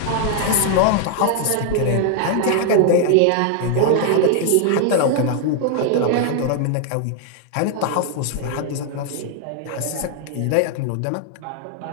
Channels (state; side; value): different; both; correlation 0.00